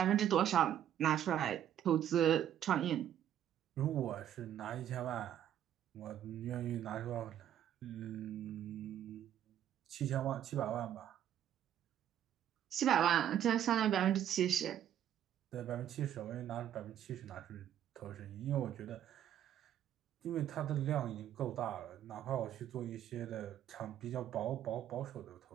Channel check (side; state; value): left; quieter; 10.7 dB